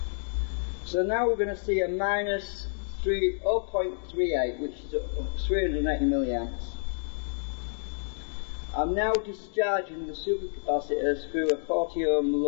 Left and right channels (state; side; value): silent; right; digital silence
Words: So now we're going to see a minus 0.38, which is 380 milliamps. I'm now discharging the supercapacitors through a 40 ohm